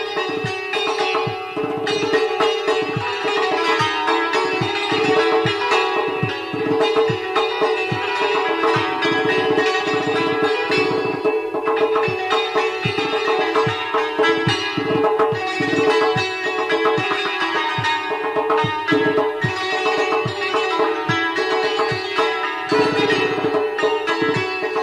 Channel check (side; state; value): both; identical; correlation 1.00